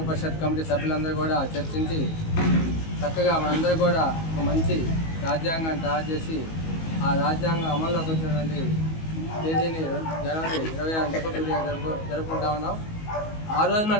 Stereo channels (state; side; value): late; right; 19 ms